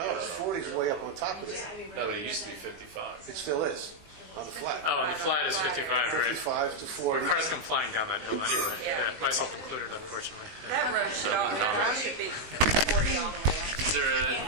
it's 40 is way up on top of it. No, but it used to be 55. It still is, on the flat. Oh, and the flat is 55, right? 55 to 40. Cars come flying down that hill anyway. Yeah, myself included, unfortunately. Yeah. That road should, should be 40 all the way up. Is there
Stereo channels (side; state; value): left; late; 19 ms